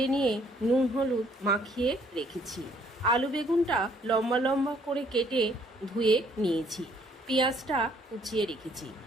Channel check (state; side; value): normal; both; correlation 0.64